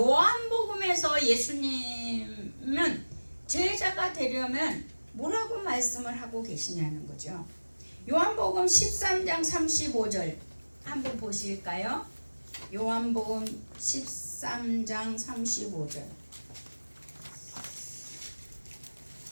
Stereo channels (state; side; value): inverted; both; correlation -1.00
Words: 예수님은 제자가 되려면 뭐라고 말씀을 하고 계시냐는 거죠. 요한복음 13장 35절 한번 보실까요? 요한복음 13장 35절.